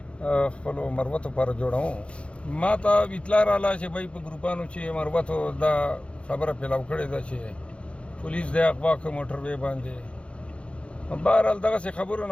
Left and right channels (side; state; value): right; late; 0.059 ms